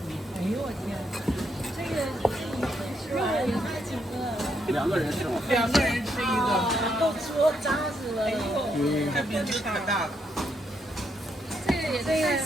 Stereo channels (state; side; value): normal; both; correlation 0.77